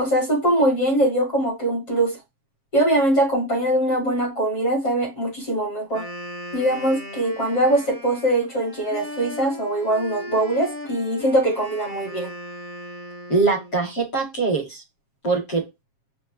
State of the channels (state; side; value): late; right; 7.4 ms